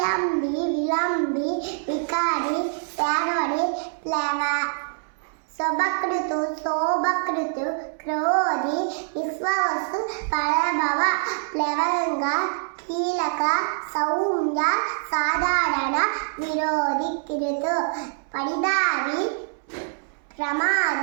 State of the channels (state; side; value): silent; left; 62 dB below the other